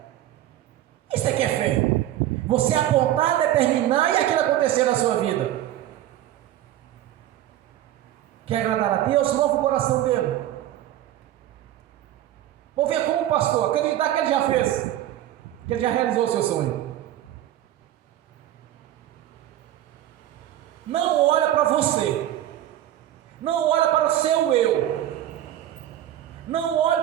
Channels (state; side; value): quieter; left; 12.9 dB